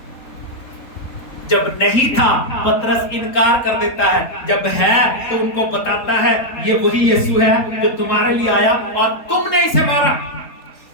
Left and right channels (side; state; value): right; late; 3.7 ms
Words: जब नहीं था पतरस इनकार कर देता है, जब है तो उनको बताता है ये वही यीशु है जो तुम्हारे लिए आया और तुमने इसे मारा।